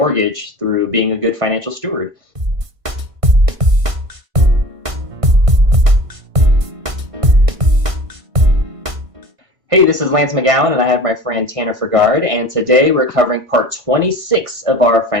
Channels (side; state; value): left; late; 1.5 ms